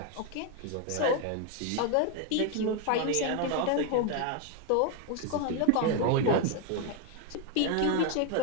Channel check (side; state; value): both; different; correlation 0.01